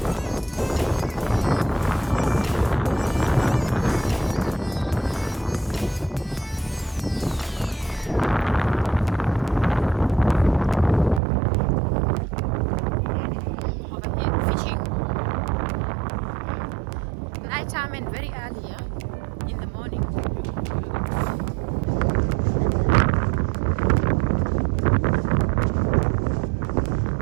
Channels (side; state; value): left; drops out; at 11.2 s